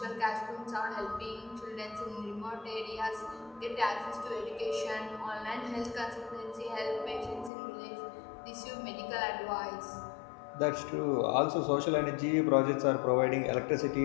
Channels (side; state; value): right; drops out; at 7.5 s